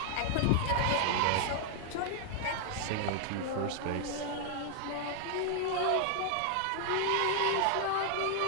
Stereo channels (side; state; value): both; different; correlation 0.00